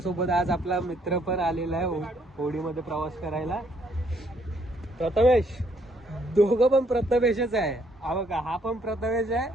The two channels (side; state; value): both; normal; correlation 0.68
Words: आज आपला मित्र पण आलेला आहे होडीमध्ये प्रवास करायला. प्रथमेश, दोघं पण प्रथमेशच आहे. हा बघा, हा पण प्रथमेश आहे